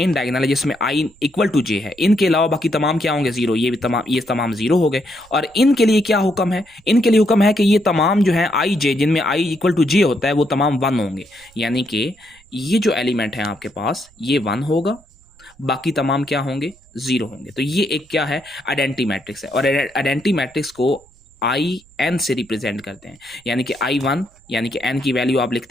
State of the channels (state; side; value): noise; right; rumble, 29 dB below the sound